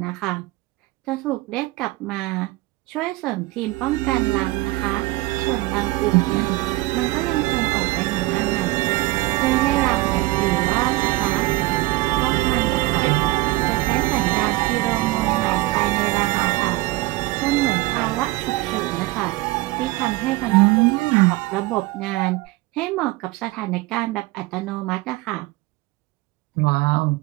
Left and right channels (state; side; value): quieter; left; 19.5 dB